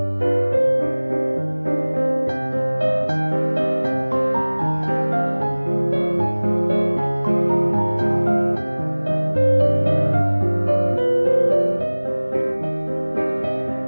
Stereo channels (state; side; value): inverted; both; correlation -1.00